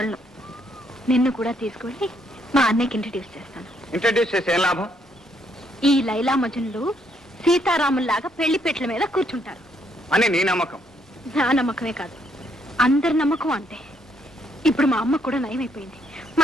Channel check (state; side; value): normal; both; correlation 0.72